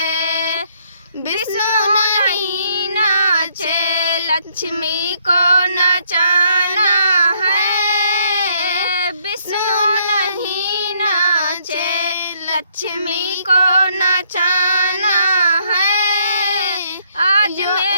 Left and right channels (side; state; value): both; inverted; correlation -0.69